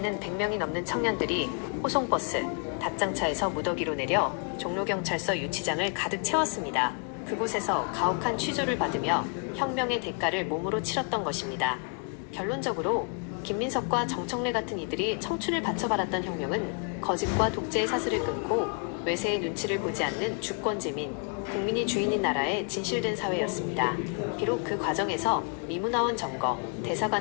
100명이 넘는 청년들이 호송버스, 답장차에서 무더기로 내려 종로경찰서 유치장을 가득 채웠습니다. 그곳에서 가혹한 취조를 받으며 혁명의 대가를 몸으로 치렀던 것입니다. 결론적으로 김민석과 정청래 같은 이들이 청춘을 바쳐바랐던 혁명은 거짓과 독재의 사슬을 끊고 외세의 눈치를 보지 않는 주권제민, 국민이 주인인 나라의 진실된 사회였습니다. 비록 그 과정에서 미문화원 점거,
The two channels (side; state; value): right; quieter; 38.2 dB